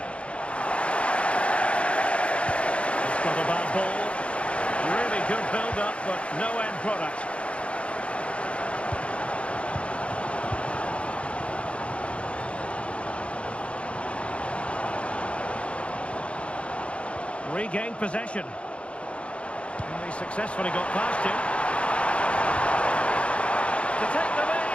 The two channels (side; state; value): right; late; 0.060 ms